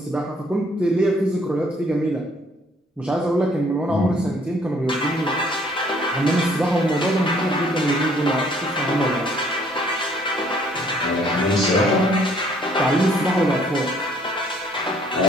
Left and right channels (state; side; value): normal; both; correlation 0.62